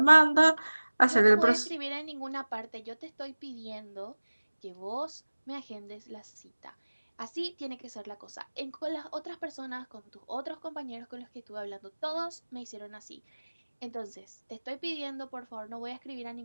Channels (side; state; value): both; inverted; correlation -1.00